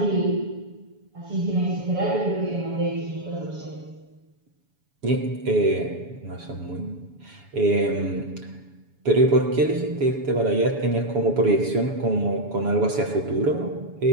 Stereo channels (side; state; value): left; late; 7.1 ms